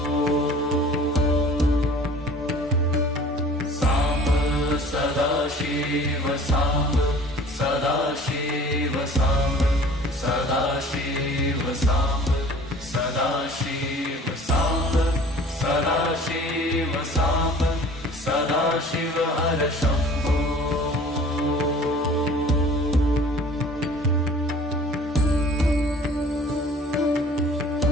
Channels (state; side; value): normal; both; correlation 0.47